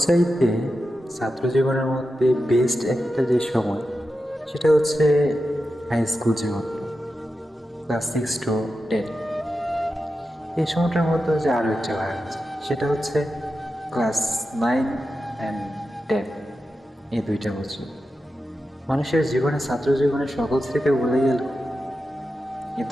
ছাত্র জীবনের মধ্যে বেস্ট একটা যে সময়, সেটা হচ্ছে হাই স্কুল জীবন, ক্লাস 6 to 10। এই সময়টার মধ্যে যে আরও একটা ভাগ আছে, সেটা হচ্ছে ক্লাস 9 and 10, এই 2টা বছর। মানুষের জীবনে, ছাত্র জীবনে সকল স্মৃতি ভুলে গেল, এই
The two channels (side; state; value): both; normal; correlation 0.91